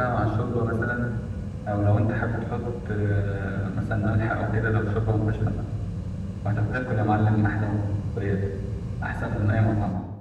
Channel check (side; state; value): both; identical; correlation 1.00